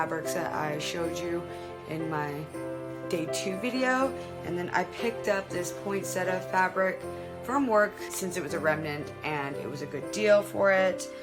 that I showed you in my day 2 video, and then I picked up this poinsettia fabric from work since it was a remnant and it was a good deal for it.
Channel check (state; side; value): identical; both; correlation 1.00